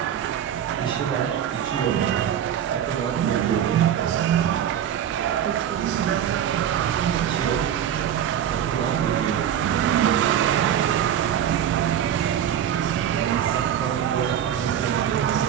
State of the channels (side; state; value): left; quieter; 9.7 dB